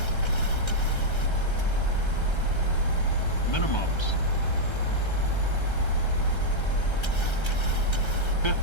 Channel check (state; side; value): late; right; 1.3 ms